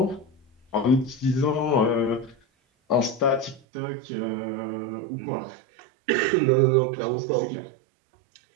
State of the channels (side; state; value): left; drops out; at 3.6 s